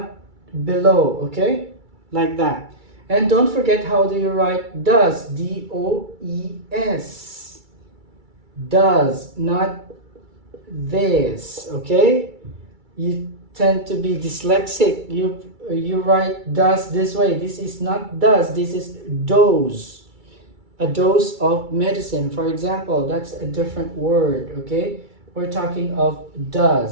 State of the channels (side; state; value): left; late; 2.3 ms